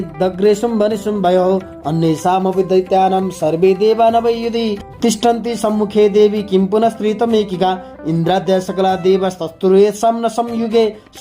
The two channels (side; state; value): both; identical; correlation 1.00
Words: दग्रे शुम्भनिशुम्भयोः अन्येषामपि दैत्यानां सर्वे देवा न वै युधि तिष्ठन्ति सम्मुखे देवी किं पुनः स्त्रीतमेकिका इन्द्राद्या सकला देवस्तस्तुर्येषां न संयुगे